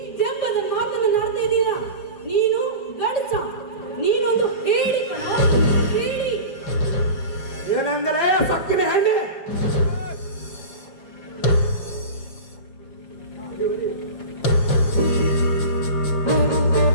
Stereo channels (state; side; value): late; right; 5.7 ms